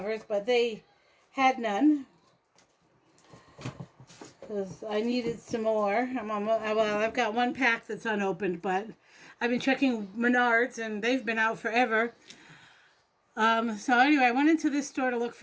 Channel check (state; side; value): identical; both; correlation 1.00